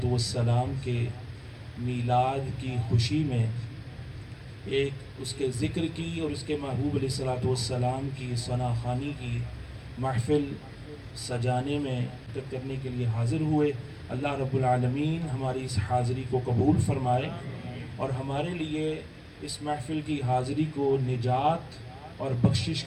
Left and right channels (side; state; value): both; identical; correlation 1.00